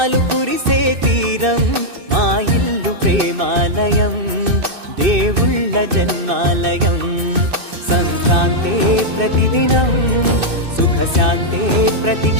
కురిసే తీరం, మా ఇల్లు ప్రేమాలయం, దేవుళ్ళ జన్మాలయం. సంక్రాంతే ప్రతిదినం, సుఖశాంతే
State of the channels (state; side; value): late; left; 2.6 ms